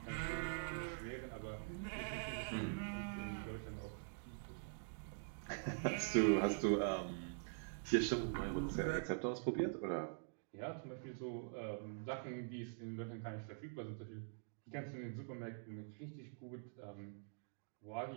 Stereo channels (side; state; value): left; silent; digital silence